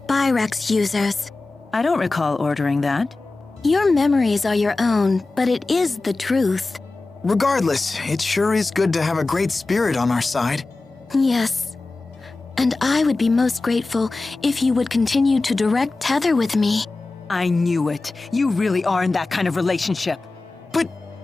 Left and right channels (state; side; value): quieter; right; 3.4 dB